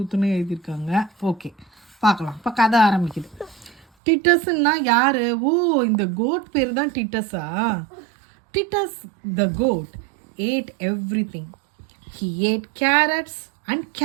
எழுதியிருக்காங்க. ஓகே, பார்க்கலாம். இப்போ கதை ஆரம்பிக்குது. டிட்டஸ்ன்னா யாரு? ஓ, இந்த கோட் பேர் தான் டிட்டஸா? Titus the goat ate everything. He ate carrots and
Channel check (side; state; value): left; drops out; at 3.9 s